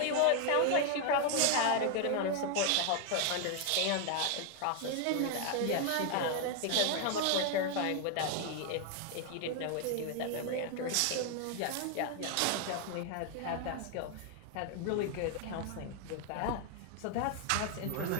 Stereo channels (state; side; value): different; both; correlation 0.00